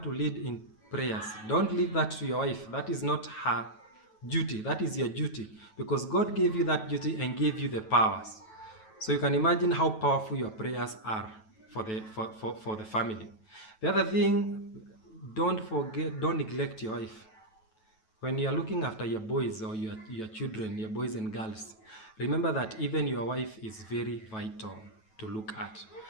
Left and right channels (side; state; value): right; late; 9.2 ms